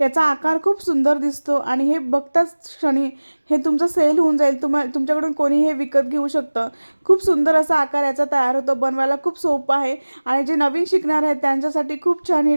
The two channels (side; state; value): both; inverted; correlation -1.00